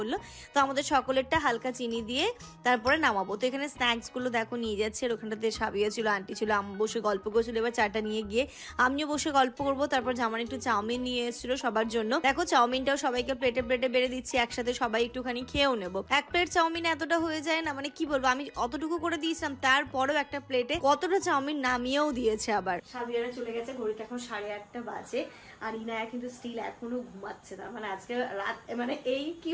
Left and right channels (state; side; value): identical; both; correlation 1.00